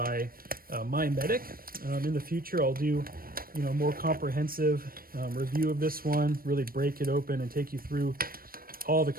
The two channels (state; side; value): late; left; 0.42 ms